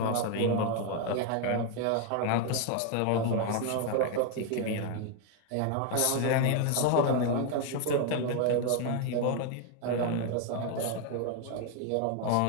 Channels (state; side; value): different; both; correlation 0.01